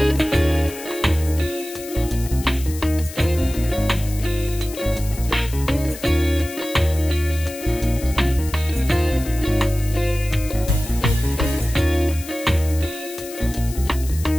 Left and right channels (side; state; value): left; noise; hiss, 14 dB below the sound